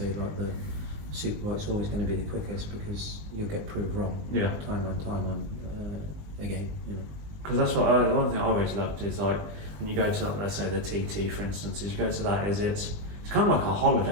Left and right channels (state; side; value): late; left; 20 ms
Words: like the superbike's always going to be the quickest, because you'll get proved wrong. Time on again. You know. Because that's what one thing I always loved is like when you go to, let's say, the TT, for instance, is you go to that, is it's kind of like a